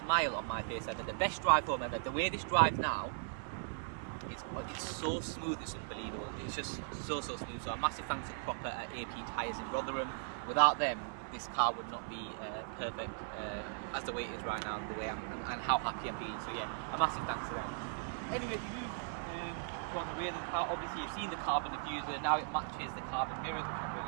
on my face ever, the best drive home ever. The way this drives now is it's so smooth, it's unbelievable. It's just so smooth. So a massive thanks to Proper at AP Tyres in Rotherham. Without them, this car would not be perfect as the way it is right now, the way and how happy I'm being. So yeah, a massive thanks to them. Anyway, to move on the rear of the car, obviously you've seen the carbon diffuser, now it matches the carbon mirrors, which I'm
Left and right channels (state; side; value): silent; left; 52 dB below the other